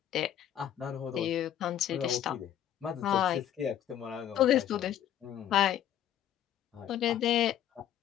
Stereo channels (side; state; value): right; quieter; 10.8 dB